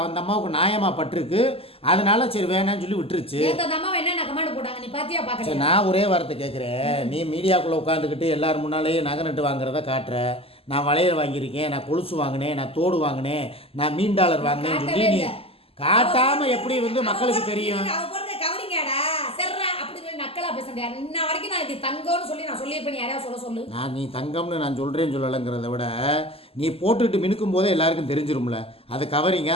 அம்மாவுக்கு நியாயமா பட்டிருக்கு. அதனால சரி வேணான்னு சொல்லி விட்டுருச்சு. சரி, நான் ஒரே வார்த்தை கேட்குறேன், நீ மீடியாக்குள்ளே உட்காந்துக்கிட்டு எல்லாரும் முன்னாலேயே நகை நட்டு வாங்குறத காட்டுற, நான் வளையல் வாங்கியிருக்கேன், நான் கொலுசு வாங்கினேன், நான் தோடு வாங்கினேன், நான் மீன் டாலர் வாங்கினேன்னு சொல்லி நீ காட்டாம எப்படி வந்து மக்களுக்கு தெரியும்? நீ தங்கம்னு நான் சொல்றேன்னு சொல்லலைங்கிறத விட நீ போட்டுட்டு மினுக்கும் போதே எல்லாருக்கும் தெரிஞ்சிரும்ல அது கவரிங்க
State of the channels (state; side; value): late; right; 0.28 ms